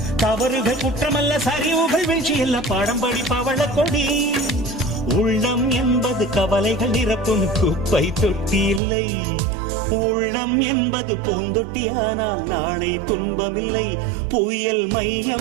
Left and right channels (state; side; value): drops out; left; at 8.8 s